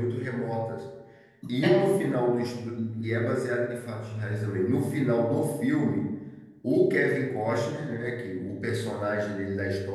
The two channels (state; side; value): identical; both; correlation 1.00